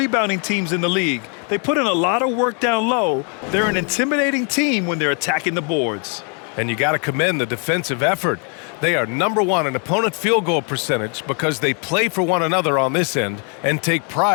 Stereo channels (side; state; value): right; quieter; 39.1 dB